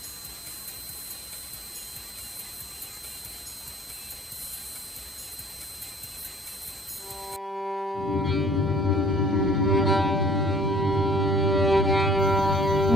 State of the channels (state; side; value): normal; both; correlation 0.55